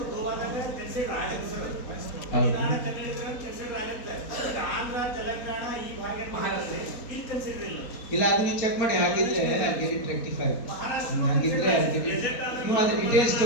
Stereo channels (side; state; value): right; late; 4.2 ms